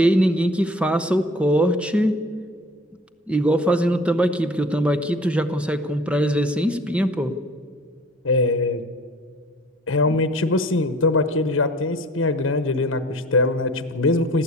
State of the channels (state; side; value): normal; both; correlation 0.49